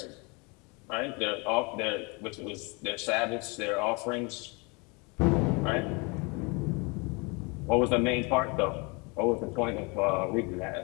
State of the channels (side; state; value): right; quieter; 29.7 dB